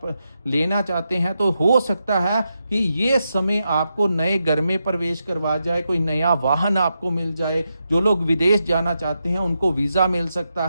लेना चाहते हैं तो हो सकता है कि ये समय आपको नए घर में प्रवेश करवा जाए, कोई नया वाहन आपको मिल जाए। जो लोग विदेश जाना चाहते हैं उनको वीज़ा मिल सकता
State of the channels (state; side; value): inverted; both; correlation -0.86